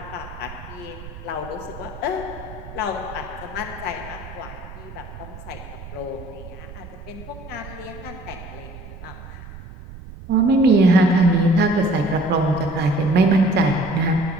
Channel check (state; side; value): noise; right; rumble, 14 dB below the sound